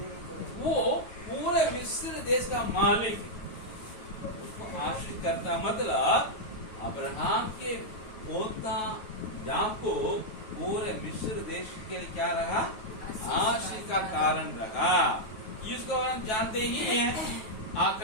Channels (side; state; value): right; late; 9.3 ms